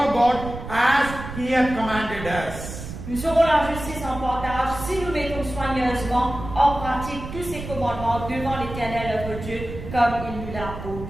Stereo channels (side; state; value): right; noise; rumble, 10 dB below the sound